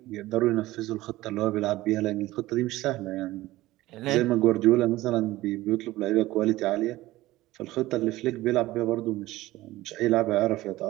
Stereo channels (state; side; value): quieter; left; 17.3 dB